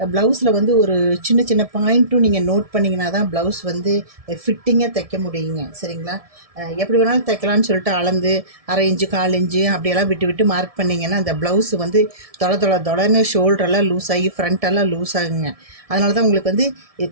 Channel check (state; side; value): late; left; 1.7 ms